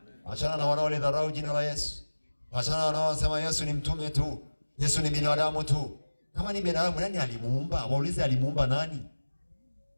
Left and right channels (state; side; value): inverted; both; correlation -1.00